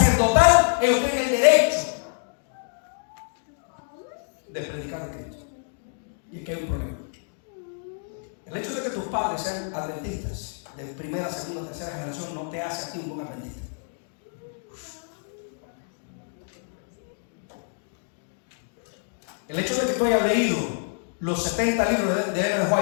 ellos tienen el derecho de predicar a Cristo. Y aquí hay un problema. El hecho de que tus padres sean adventistas de primera, segunda, tercera generación no te hace a ti un buen adventista. El hecho de que tú hayas leído los 70 libros de Ellen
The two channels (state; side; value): silent; right; digital silence